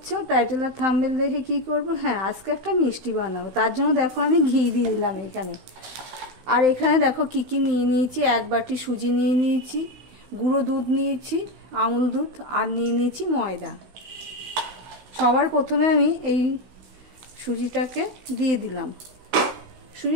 টাইটেল আর থাম্বনেল দেখে কি করব। হ্যাঁ, আজকে একটা মিষ্টি বানাবো। তার জন্য দেখো আমি ঘি দিয়ে দিলাম এখানে। আর এখানে দেখো কি কি নিয়ে নিয়েছি। 1 বাটি সুজি নিয়ে নিয়েছি, গুঁড়ো দুধ নিয়েছি, আমুল দুধ, আর নিয়ে নিয়েছি ময়দা। সবার প্রথমে আমি এই সুজিটাকে দিয়ে দিলাম।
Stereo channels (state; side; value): late; left; 16 ms